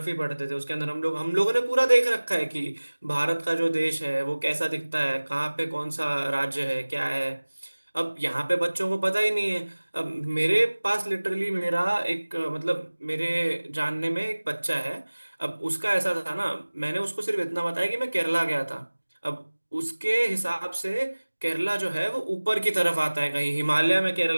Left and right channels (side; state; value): both; inverted; correlation -1.00